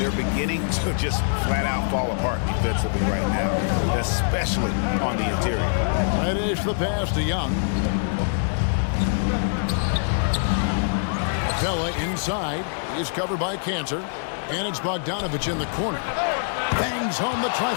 beginning to just flat out fall apart defensively right now, especially on the interior. Finish the pass to Young. Capella inside is covered by Kanter, and it's Bogdanovich in the corner. Bangs home the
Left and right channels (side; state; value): right; silent; 63 dB below the other